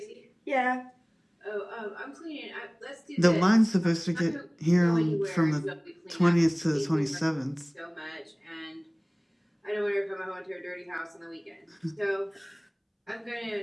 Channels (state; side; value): identical; both; correlation 1.00